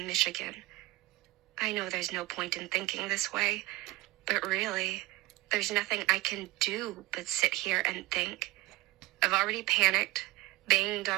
I know there's no point in thinking this way, but really, there's nothing I can do but sit here and think. I've already panicked, banged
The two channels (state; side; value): quieter; left; 19.2 dB